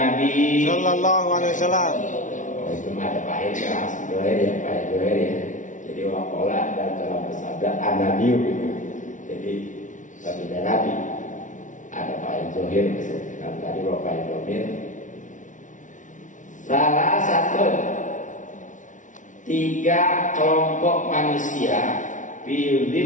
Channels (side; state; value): right; late; 0.37 ms